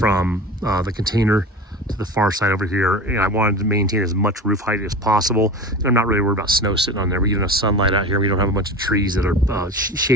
the container to the far side over here, and I wanted to maintain as much roof height as possible. And I'm not really worried about snow sitting on there. We get enough sunlight out here. We don't have a bunch of trees that are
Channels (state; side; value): normal; both; correlation 0.31